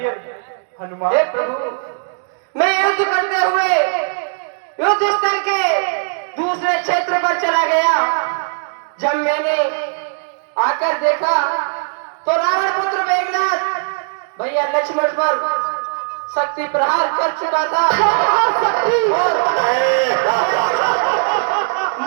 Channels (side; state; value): left; silent; digital silence